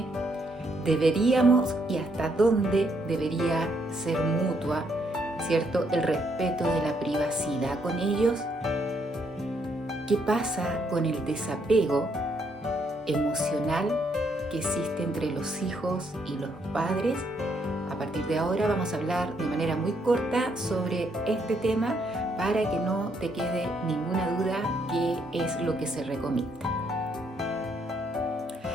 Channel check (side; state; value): both; normal; correlation 0.73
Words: ¿Deberíamos y hasta dónde debería ser mutua, cierto, el respeto de la privacidad con ellos? ¿Qué pasa con el desapego emocional que existe entre los hijos y los padres? A partir de ahora vamos a hablar de manera muy corta sobre este tema para que no te quede ninguna duda qué es lo que se recomienda.